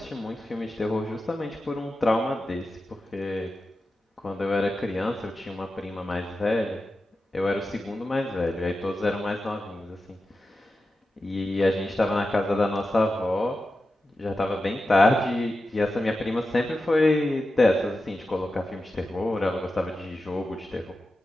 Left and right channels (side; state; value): both; normal; correlation 0.91